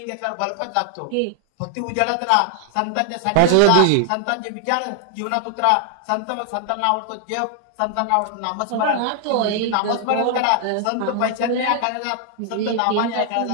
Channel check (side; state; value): both; different; correlation 0.00